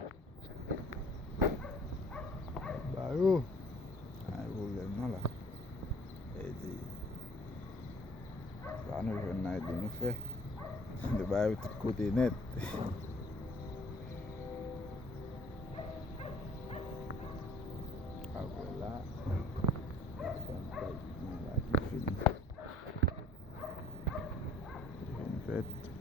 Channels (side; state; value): both; normal; correlation 0.55